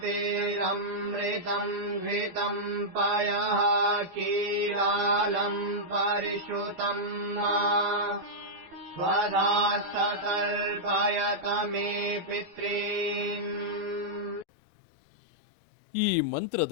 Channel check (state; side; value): late; left; 12 ms